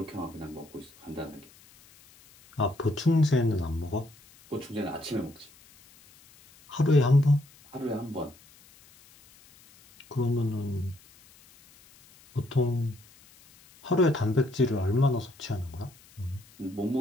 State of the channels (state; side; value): noise; left; hiss, 26 dB below the sound